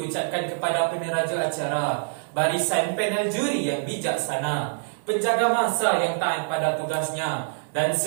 kepada peneraja acara, barisan panel juri yang bijaksana, penjaga masa yang taat pada tugasnya, dan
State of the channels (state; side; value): silent; left; digital silence